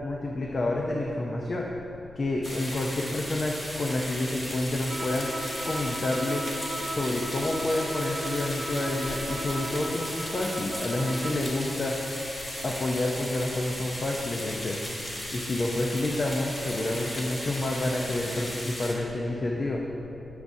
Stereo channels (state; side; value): noise; left; rumble, 19 dB below the sound